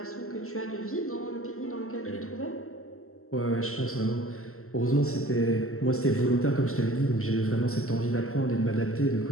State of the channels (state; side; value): late; right; 0.63 ms